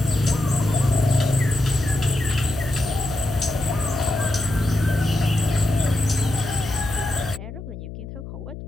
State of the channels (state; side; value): noise; left; hum, 11 dB below the sound